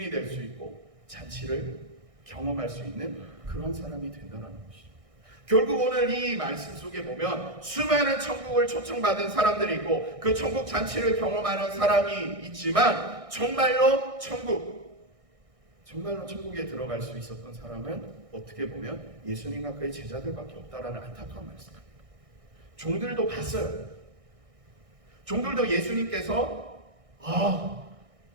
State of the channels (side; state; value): left; late; 1.6 ms